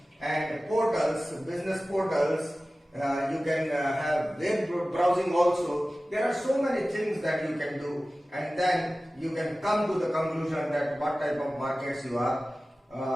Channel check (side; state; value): both; normal; correlation 0.96